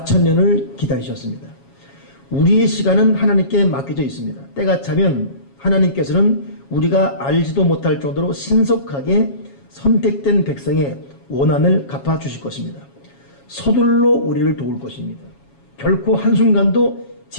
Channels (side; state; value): right; late; 7.2 ms